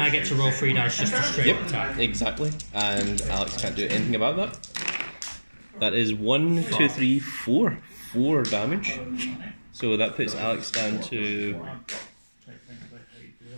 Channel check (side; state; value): both; inverted; correlation -1.00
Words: get to roll 3 dice just to straight yep, attack. exactly. And Alex can't do anything about that. That is 1, 2, 3, 4. 4 damage. So that puts Alex down to